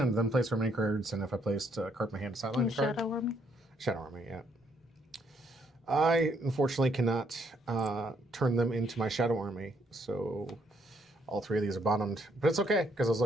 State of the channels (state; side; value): normal; both; correlation 0.71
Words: then place remaining cards, and if I placed a card in my hand, sideline card. Shadow Army. Shadow Army, yeah. I unfortunately cannot turn them into my Shadow Army, so all 3 of these are bottomed. But it's okay, because I was